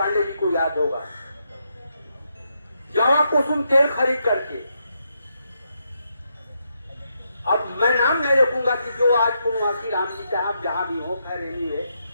जी को याद होगा, जवा कुसुम तेल खरीद करके। अब मैं नाम नहीं रखूंगा कि जो आज पूर्णवासी राम जी साहब जहां भी हो, खैर एनीवे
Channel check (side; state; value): both; inverted; correlation -0.80